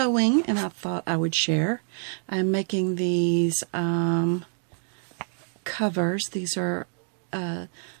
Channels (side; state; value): left; silent; digital silence